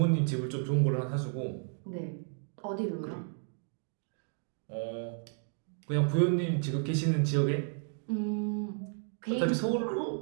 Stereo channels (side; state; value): left; silent; 55 dB below the other